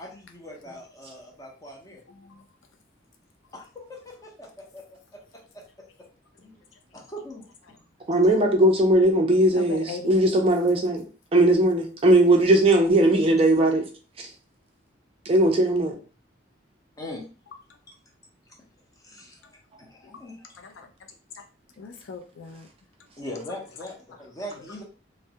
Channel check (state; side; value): normal; both; correlation 0.46